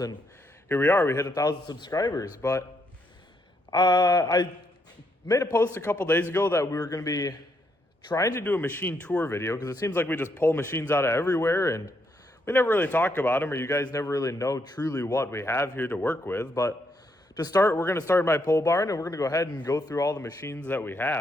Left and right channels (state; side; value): normal; both; correlation 0.76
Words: here we are. We hit 1,000 subscribers. But I made a post a couple days ago that we were going to be trying to do a machine tour video because it seems like we just pull machines out of everywhere and we never really talk about them, or you guys never really know truly what we have here to work with. But to start, we're going to start my pole barn, and we're going to go ahead and go through all the machines that we